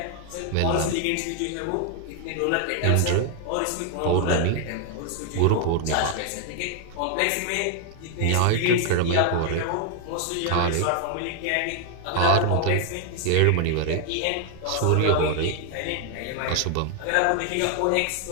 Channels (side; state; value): both; different; correlation 0.00